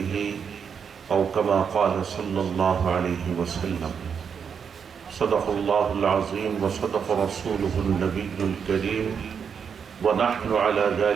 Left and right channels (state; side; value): quieter; left; 6.8 dB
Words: أو كما قال صلى الله عليه وسلم. صدق الله العظيم وصدق رسوله النبي الكريم ونحن على